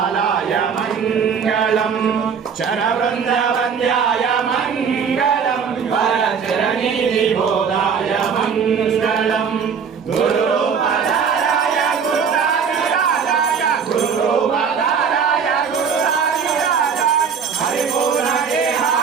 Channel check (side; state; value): left; quieter; 6.6 dB